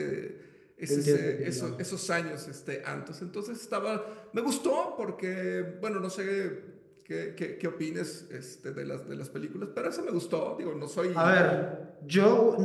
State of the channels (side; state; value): both; identical; correlation 1.00